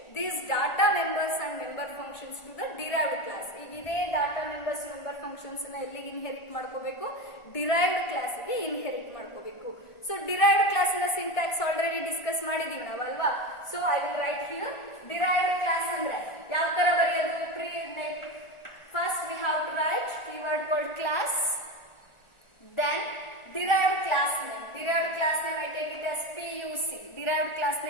these data members and member functions to the derived class. ಈಗ ಇದೇ data members member functions ನ ಎಲ್ಲಿಗೆ ಇನ್ಹೆರಿಟ್ ಮಾಡ್ಕೋಬೇಕು, derived class ಗೆ ಇನ್ಹೆರಿಟ್ ಮಾಡ್ಕೋಬೇಕು. So derived class ನ syntax already discuss ಮಾಡಿದೀವಿ ನಾವು ಅಲ್ವಾ. So I will write here derived class ಅಂದ್ರೆ ಯಾವ ತರ ಬರೆಯೋದು. First we have to write keyword called class, then derived class name. Derived class name I take it as PUC. Derived class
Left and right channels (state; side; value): late; right; 1.4 ms